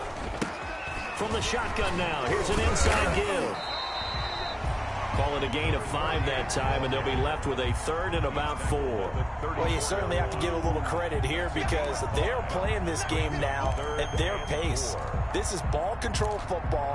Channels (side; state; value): both; identical; correlation 1.00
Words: From the shotgun now, here's an inside give. Call it a gain of 5 that time, and they'll be left with a 3rd and about 4. Well, you certainly have to give a little credit here because they're playing this game now at their pace. This is ball control